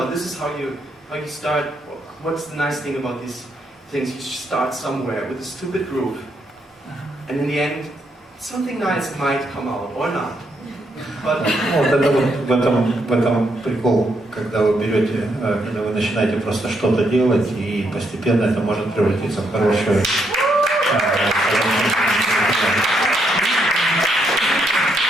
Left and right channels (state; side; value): normal; both; correlation 0.77